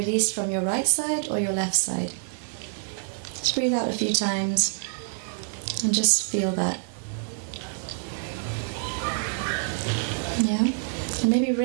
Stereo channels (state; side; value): silent; left; 60 dB below the other